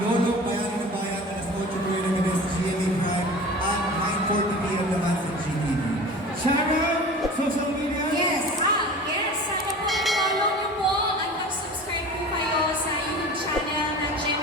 Bayan ng Bayan alas 8 po yun ng gabi sa GMA Prime at 9:40 p.m. naman sa GTV. Sharon, social media? Yes! Yes, sana po i-follow niyo po at mag-subscribe po kayo sa YouTube channel ng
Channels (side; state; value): both; normal; correlation 0.38